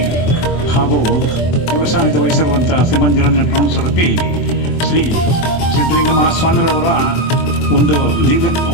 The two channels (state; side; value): late; right; 24 ms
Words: ಹಾಗೂ ಶಿವಸಾನಿಧ್ಯ ವಹಿಸಿರುವಂಥ ಶ್ರೀಮಂತ ನಿರಂಜನ ಪ್ರಮುಖ ಸ್ವರೂಪಿ ಶ್ರೀ ಸಿದ್ಧಲಿಂಗ ಮಹಾಸ್ವಾಮಿರವರ ಒಂದು